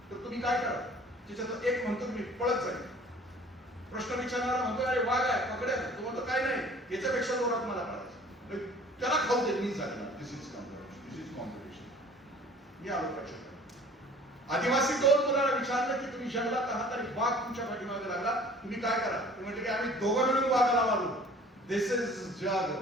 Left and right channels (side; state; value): both; normal; correlation 0.49